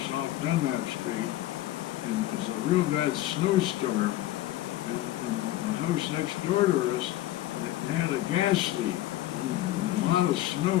off Dunlap Street, and there's a real bad snowstorm, and the house next door to us, they had a gas leak, and a lot of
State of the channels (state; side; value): quieter; right; 14.9 dB